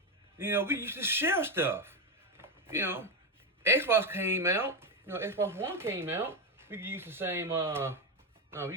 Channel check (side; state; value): both; normal; correlation 0.10